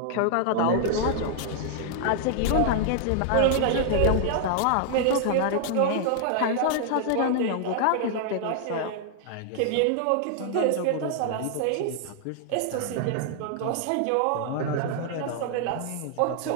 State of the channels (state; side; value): different; both; correlation 0.00